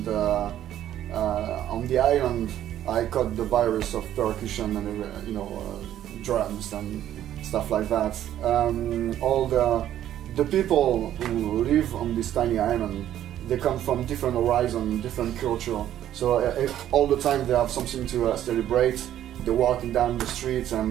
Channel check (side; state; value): left; quieter; 11.7 dB